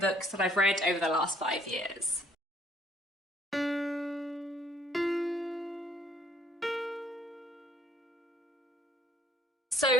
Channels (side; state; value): both; normal; correlation 0.62